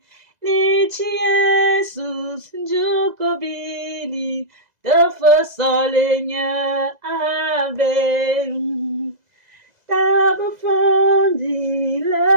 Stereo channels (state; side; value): late; left; 2.0 ms